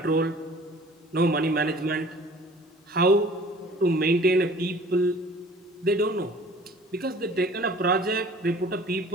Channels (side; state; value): both; normal; correlation 0.48